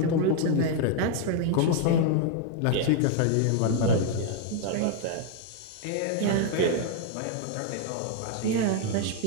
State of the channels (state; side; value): different; both; correlation 0.00